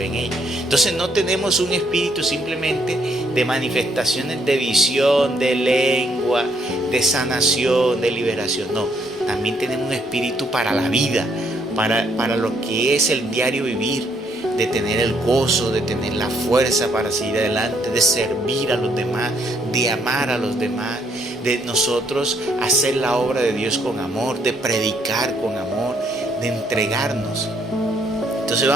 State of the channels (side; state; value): both; normal; correlation 0.71